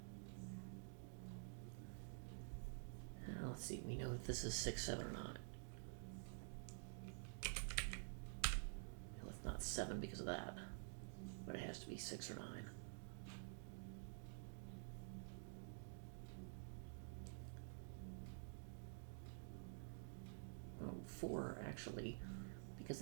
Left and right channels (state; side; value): silent; left; digital silence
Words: Now let's see, we know that this is 6, 7, or 9. Well, it's not 7 because of that, but it has to be 6 or 9. Oh, 4 actually, because